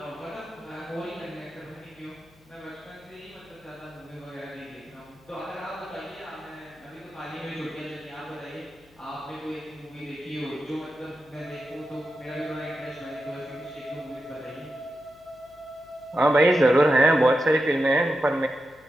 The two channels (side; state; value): left; noise; hum, 29 dB below the sound